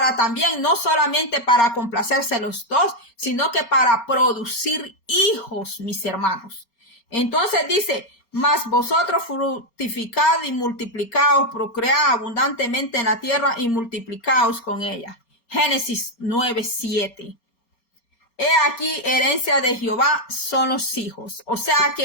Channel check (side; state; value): right; late; 4.3 ms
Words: también, no solamente para complacerse los dos, sino que para producir hijos, mis hermanos. Entonces dice, mas vosotros fructificad y multiplicaos, procread abundantemente en la tierra y multiplicaos con ella. Génesis 9:7. He aquí, herencia de Jehová son los hijos. O sea